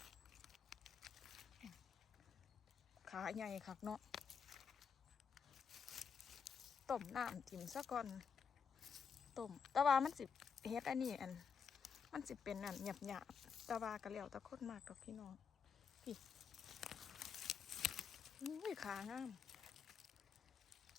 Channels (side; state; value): right; quieter; 6.3 dB